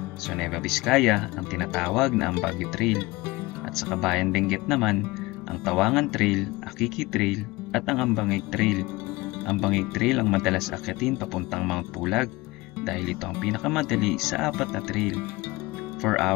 Sa Nueva Vizcaya ang tinatawag na ang Baguio Trail. At sa Kabayan Benguet naman, ang Tawangan Trail, Akiki Trail at ang Ambangig Trail. Ambangig Trail ang madalas akyatin papuntang Mount Pulag dahil ito ang pinakamadali sa 4 na trail. 4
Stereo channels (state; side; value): quieter; right; 21.5 dB